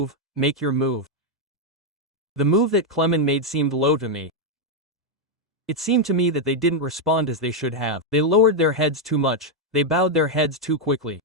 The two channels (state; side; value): normal; both; correlation 0.00